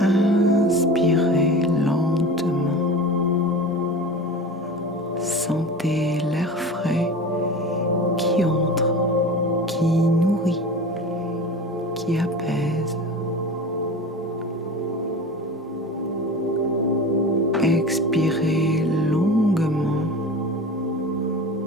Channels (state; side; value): normal; both; correlation 0.33